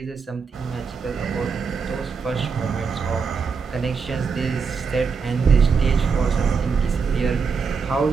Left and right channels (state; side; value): quieter; left; 5.4 dB